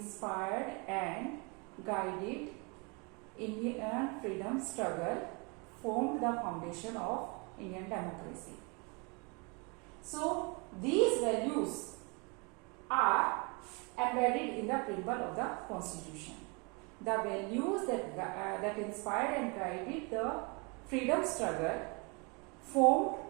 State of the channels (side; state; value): left; quieter; 31.3 dB